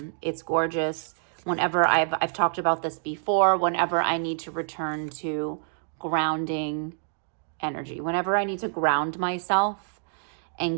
It's gorgeous. Whenever I've talked about this before, whenever I need to return to grounding energy, whenever I need to ground myself and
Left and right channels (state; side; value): silent; left; 60 dB below the other